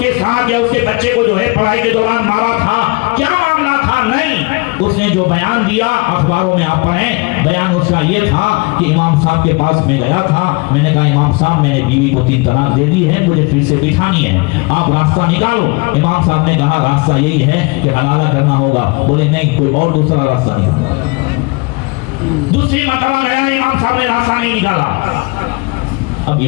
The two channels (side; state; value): right; quieter; 27.3 dB